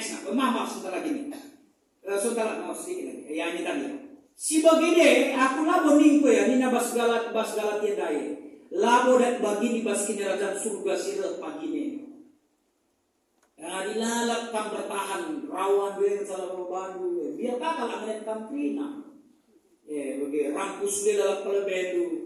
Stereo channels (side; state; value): both; identical; correlation 1.00